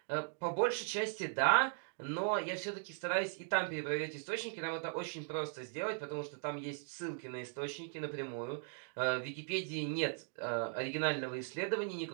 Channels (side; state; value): left; silent; 52 dB below the other